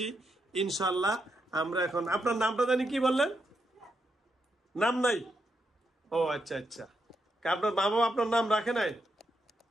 ইনশাল্লাহ। আমরা এখন আপনার নামটা জানি কি বললেন? নাম নাই? ও আচ্ছা আচ্ছা, আপনার মা বাবা আপনার নাম রাখে নাই?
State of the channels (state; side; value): normal; both; correlation 0.82